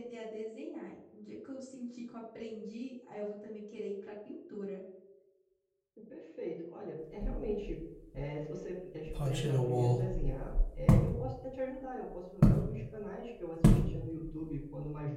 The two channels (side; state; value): both; identical; correlation 1.00